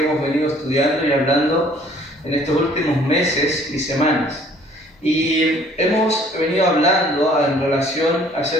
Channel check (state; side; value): normal; both; correlation 0.56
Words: hemos venido estudiando y hablando en estos últimos meses y semanas. Y hemos venido hablando en relación